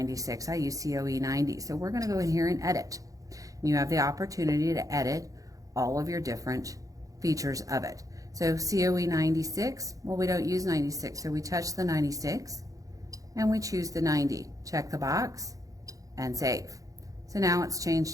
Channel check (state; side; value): late; left; 0.17 ms